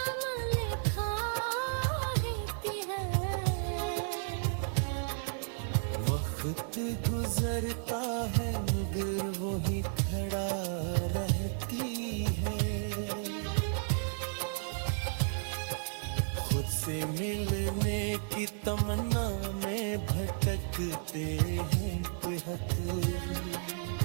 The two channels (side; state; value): left; silent; digital silence